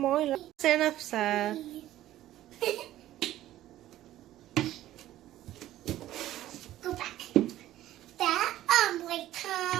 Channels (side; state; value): left; quieter; 14.0 dB